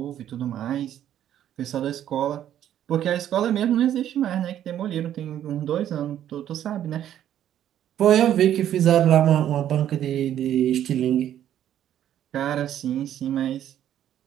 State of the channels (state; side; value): quieter; left; 11.0 dB